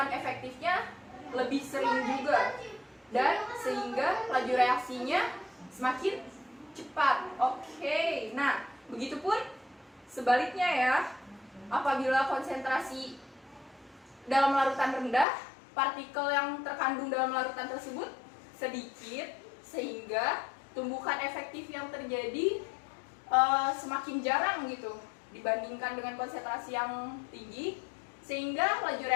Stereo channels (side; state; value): right; drops out; at 15.2 s